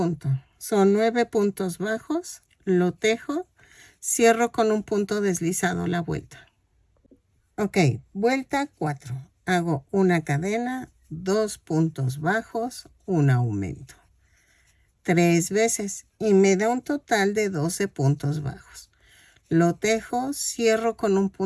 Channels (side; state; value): both; identical; correlation 1.00